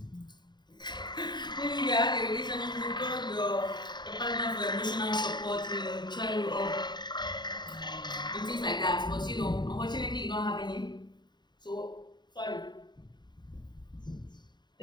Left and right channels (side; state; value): right; late; 0.21 ms